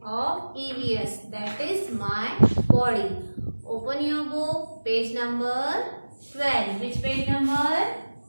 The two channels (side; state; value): both; inverted; correlation -1.00